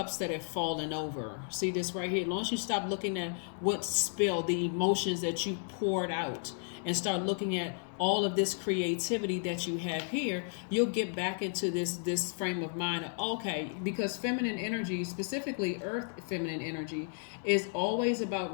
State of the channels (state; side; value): silent; right; 56 dB below the other